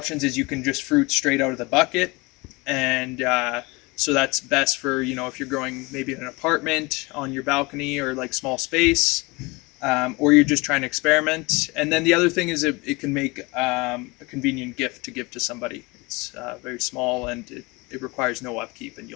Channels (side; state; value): right; quieter; 25.1 dB